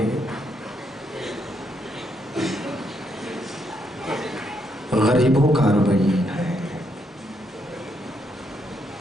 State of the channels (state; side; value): normal; both; correlation 0.76